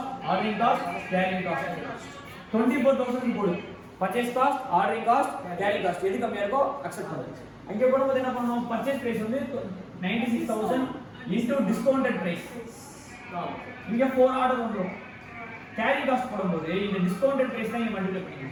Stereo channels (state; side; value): identical; both; correlation 1.00